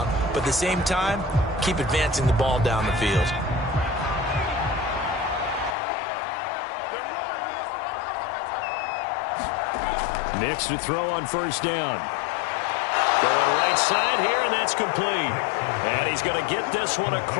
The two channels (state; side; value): drops out; right; at 5.8 s